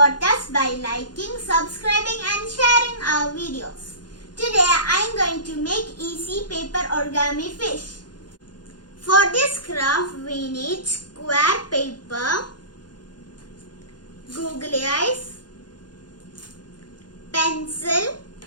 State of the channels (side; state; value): right; late; 0.70 ms